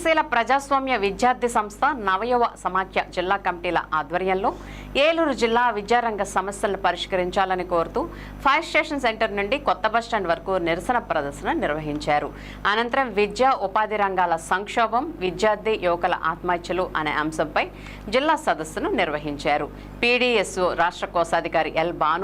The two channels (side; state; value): both; identical; correlation 1.00